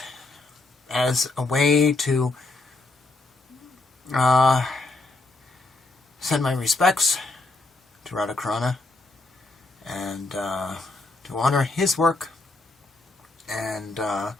as a way to send my respects to Radha Carana and to honor his work and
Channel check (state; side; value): quieter; right; 3.1 dB